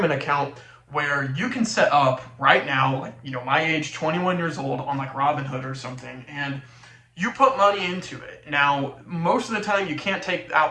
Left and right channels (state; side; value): identical; both; correlation 1.00